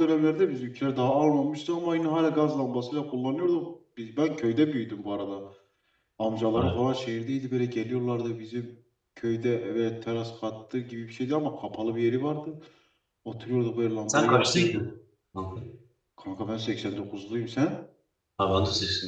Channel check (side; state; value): both; identical; correlation 1.00